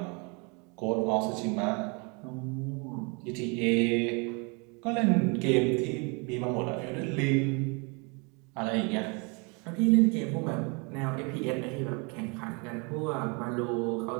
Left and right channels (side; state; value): left; quieter; 31.9 dB